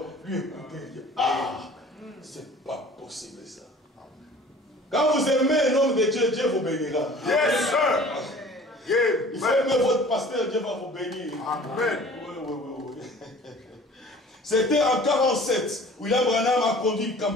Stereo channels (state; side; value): normal; both; correlation 0.48